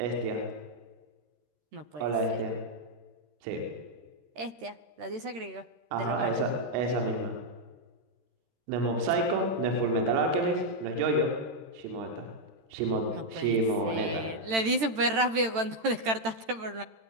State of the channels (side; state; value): left; late; 13 ms